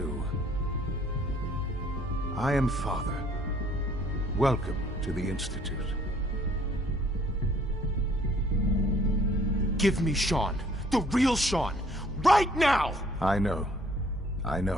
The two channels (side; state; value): both; normal; correlation 0.60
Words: I am Father. Welcome to the Institute. Give me Sean. The real Sean. Right now! I know. I